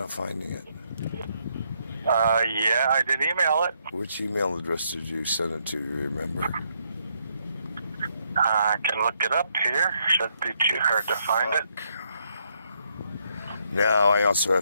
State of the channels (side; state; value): both; inverted; correlation -0.75